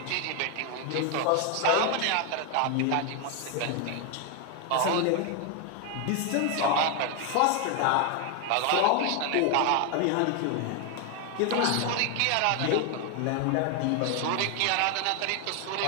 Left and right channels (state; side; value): different; both; correlation 0.01